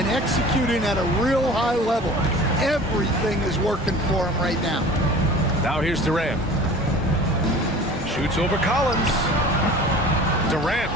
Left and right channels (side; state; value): both; normal; correlation 0.42